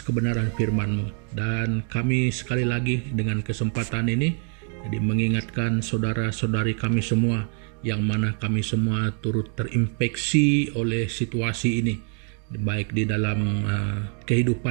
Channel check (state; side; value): quieter; left; 40.0 dB